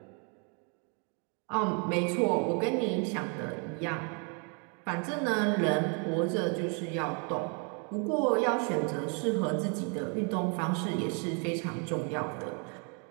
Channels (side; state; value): left; quieter; 37.2 dB